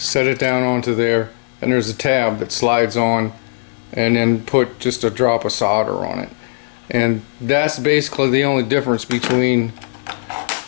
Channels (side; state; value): right; silent; digital silence